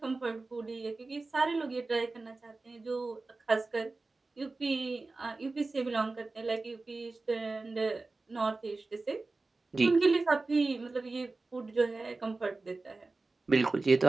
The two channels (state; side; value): quieter; left; 3.5 dB